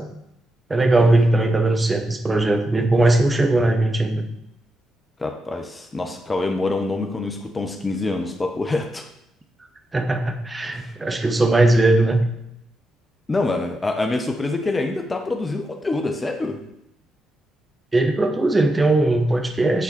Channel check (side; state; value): both; normal; correlation 0.87